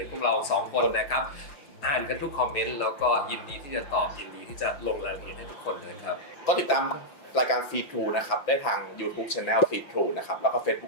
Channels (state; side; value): late; right; 5.7 ms